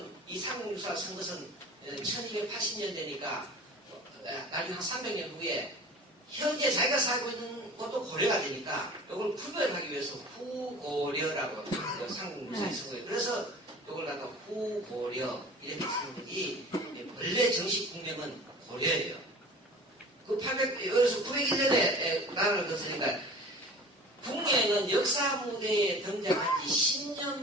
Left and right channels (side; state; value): both; normal; correlation 0.41